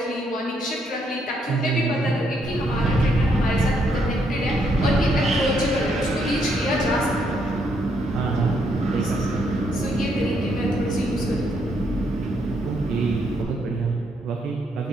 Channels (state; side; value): normal; both; correlation 0.74